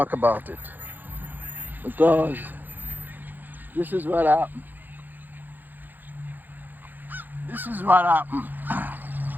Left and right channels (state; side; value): late; left; 0.087 ms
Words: about it, because this is what happened. This is what happened